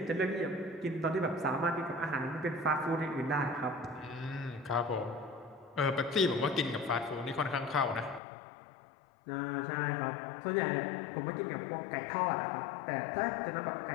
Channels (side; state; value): right; drops out; at 8.2 s